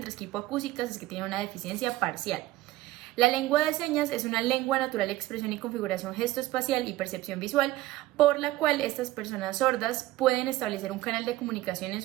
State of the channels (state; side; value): quieter; left; 16.7 dB